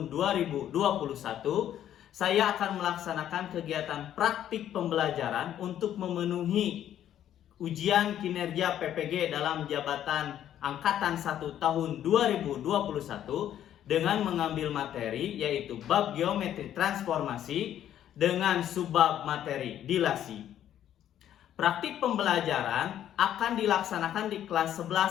2021, saya akan melaksanakan kegiatan praktik pembelajaran untuk memenuhi ujian kinerja PPG dalam jabatan Angkatan 1 tahun 2021 dengan mengambil materi yaitu bab geometri transformasi dengan subbab materi dilasi. Praktik pembelajaran akan dilaksanakan di kelas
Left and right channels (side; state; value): right; quieter; 11.0 dB